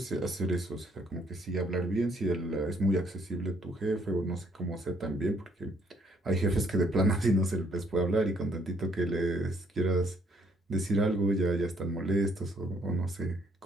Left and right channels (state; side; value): normal; both; correlation 0.67